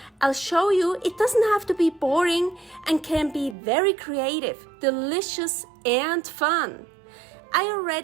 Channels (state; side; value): drops out; left; at 3.6 s